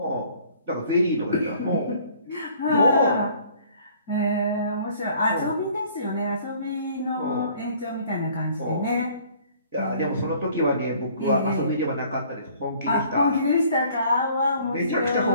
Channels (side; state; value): both; inverted; correlation -0.56